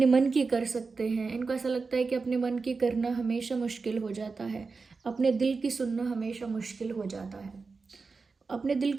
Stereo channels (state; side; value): quieter; left; 4.4 dB